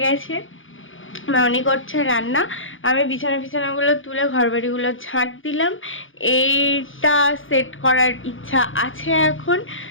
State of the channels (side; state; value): right; late; 0.58 ms